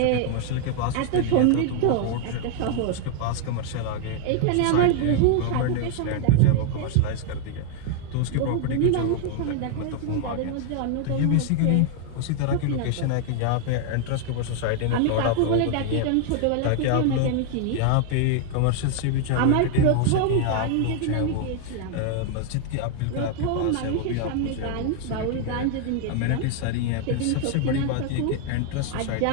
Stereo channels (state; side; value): different; both; correlation 0.00